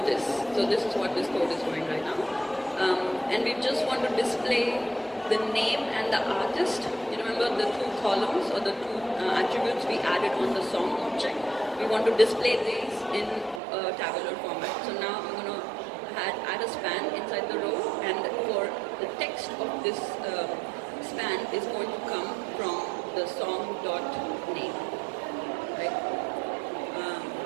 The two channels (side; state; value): left; drops out; at 13.6 s